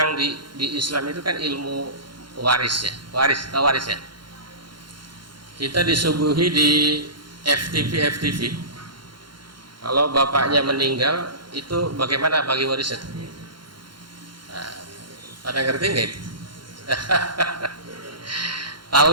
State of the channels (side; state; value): left; late; 0.72 ms